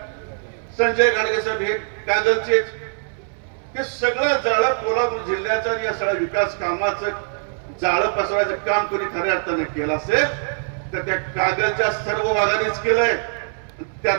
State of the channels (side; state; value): left; silent; 64 dB below the other